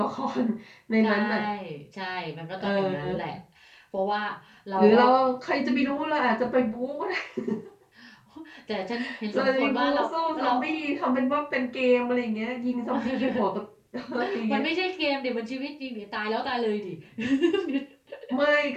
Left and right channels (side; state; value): both; identical; correlation 1.00